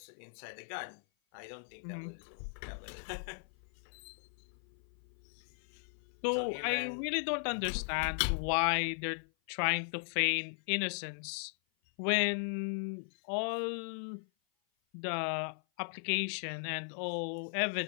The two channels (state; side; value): silent; right; 53 dB below the other